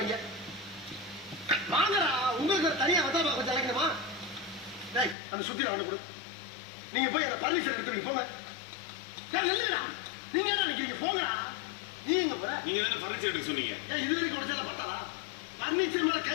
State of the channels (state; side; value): drops out; right; at 5.2 s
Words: வாங்கடா. உங்களுக்கு தனியா வந்தா கொஞ்சம் அழைக்கணுமா? அந்த சுத்தில அவனை கொடு. நீங்க போய் அந்த பர்மிஷன் எடுத்துருங்க போங்க. இல்லையா நீங்க என்ன நினைக்கிறீங்க? போங்கடா. நீ எங்க போற? நீங்க தானே பர்னிச்சர் எடுக்க சொன்னீங்க. இது வரைக்கும் உடச்சல பார்த்தாரா? பர்னிச்சர் மேல